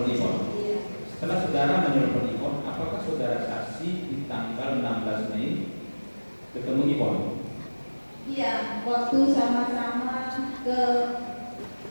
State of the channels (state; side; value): inverted; both; correlation -1.00